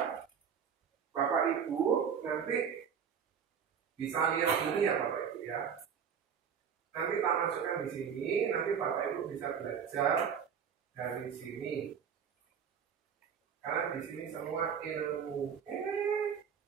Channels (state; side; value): quieter; left; 7.4 dB